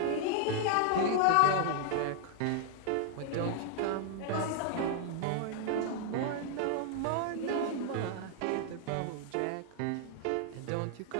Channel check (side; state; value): both; different; correlation 0.00